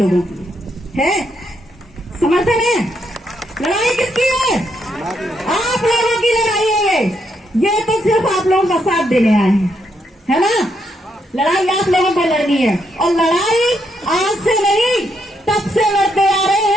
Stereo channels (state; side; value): normal; both; correlation 0.77